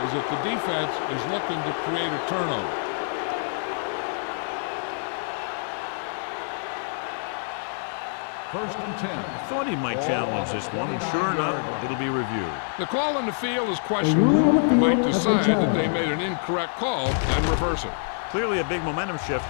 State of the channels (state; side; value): silent; right; digital silence